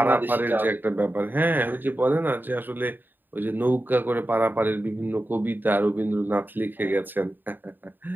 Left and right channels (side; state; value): left; late; 0.092 ms